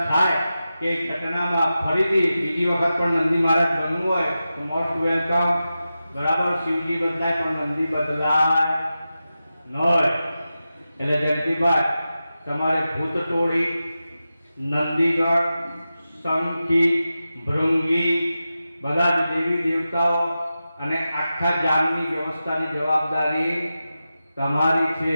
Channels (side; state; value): both; inverted; correlation -0.92